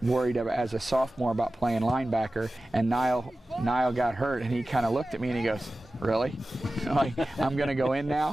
worried as a sophomore about playing linebacker, and Niall got hurt, and he kind of looked at me and he goes, "Really? Like, I'm going to go in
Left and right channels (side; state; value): both; normal; correlation 0.95